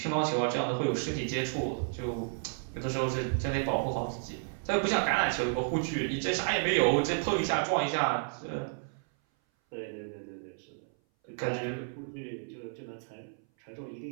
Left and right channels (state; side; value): silent; left; 57 dB below the other